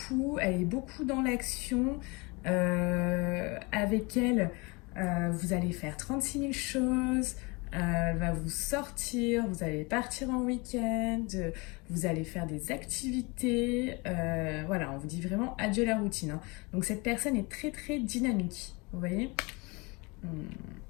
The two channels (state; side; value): quieter; right; 27.5 dB